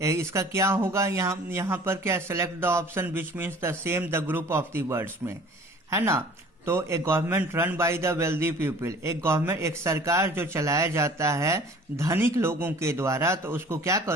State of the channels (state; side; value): normal; both; correlation 0.48